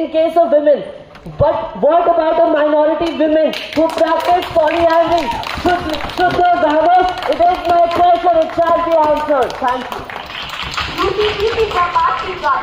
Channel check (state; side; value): identical; both; correlation 1.00